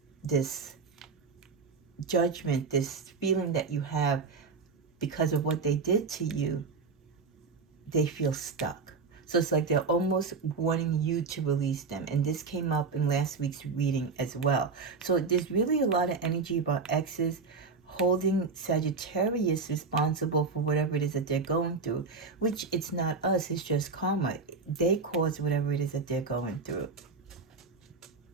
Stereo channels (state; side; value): quieter; left; 4.5 dB